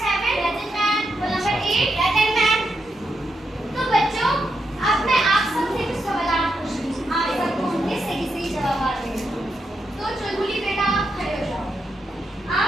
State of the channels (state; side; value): normal; both; correlation 0.84